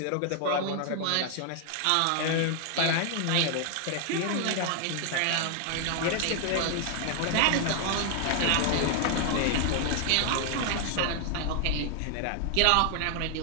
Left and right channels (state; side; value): different; both; correlation 0.00